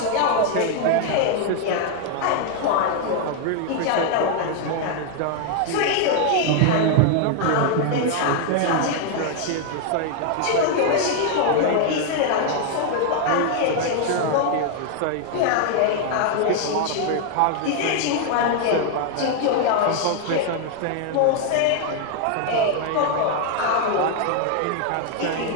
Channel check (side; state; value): both; different; correlation 0.00